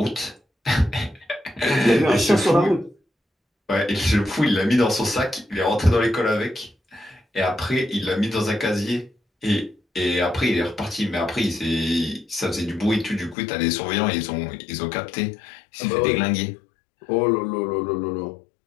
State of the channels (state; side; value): drops out; right; at 13.4 s